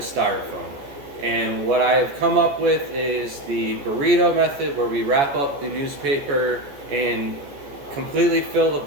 styrofoam. And what I have come up with is the burrito method, where we wrap up the newspaper and completely fill the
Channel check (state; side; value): late; left; 14 ms